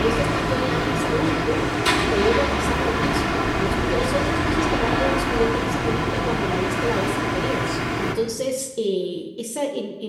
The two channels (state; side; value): identical; both; correlation 1.00